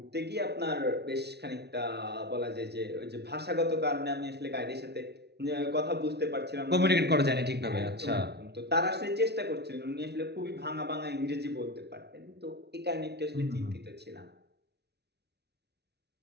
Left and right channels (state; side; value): late; left; 0.49 ms